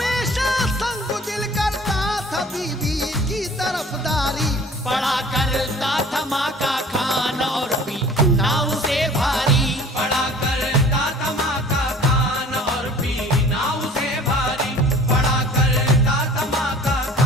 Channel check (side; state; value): both; normal; correlation 0.48